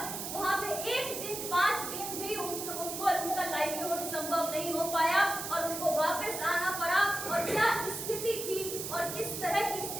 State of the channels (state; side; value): noise; right; hiss, 6 dB below the sound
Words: वहाँ पे एक दिन 5 दिन भी उनका लाइवलीहुड संभव नहीं हो पाया और उनको वापस आना पड़ा। और क्या स्थिति थी और किस तरह की